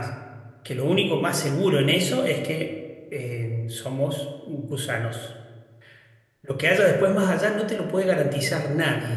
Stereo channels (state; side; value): identical; both; correlation 1.00